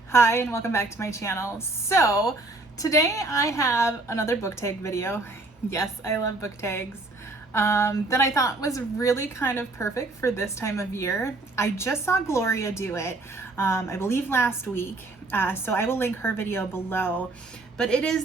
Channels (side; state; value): left; quieter; 3.1 dB